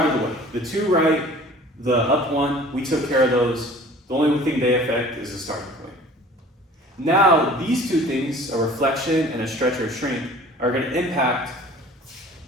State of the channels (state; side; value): normal; both; correlation 0.47